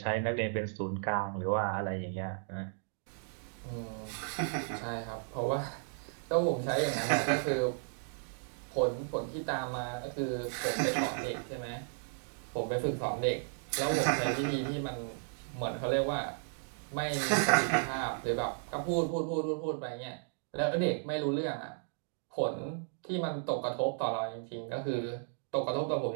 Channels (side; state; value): left; silent; digital silence